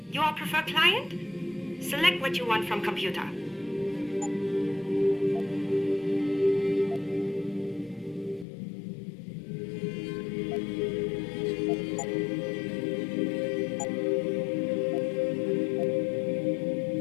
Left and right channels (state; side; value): drops out; right; at 8.5 s